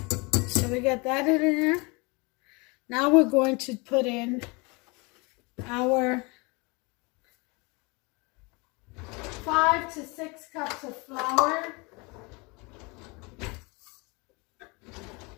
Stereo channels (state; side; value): quieter; right; 28.0 dB